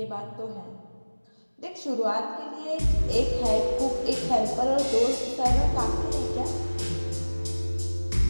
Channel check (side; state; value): both; inverted; correlation -1.00